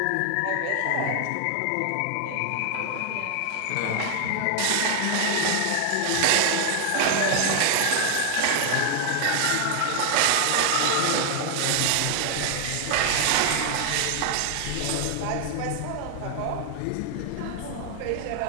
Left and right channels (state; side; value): different; both; correlation 0.00